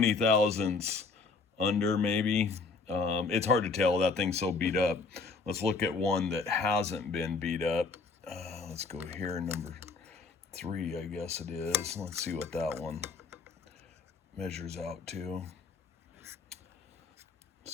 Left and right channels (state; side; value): quieter; right; 4.3 dB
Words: thousandths under, maybe. It's hard to tell. That thing's so beat up. Let's look at one that hasn't been beat up. Let's go here, number 3, I guess it is. Let's see what that one measures out to.